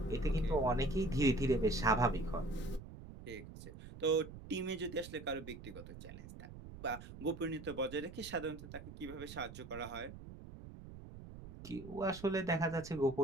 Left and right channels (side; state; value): right; noise; rumble, 14 dB below the sound